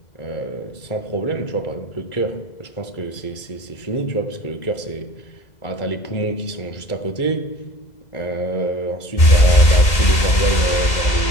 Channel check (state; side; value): late; right; 2.0 ms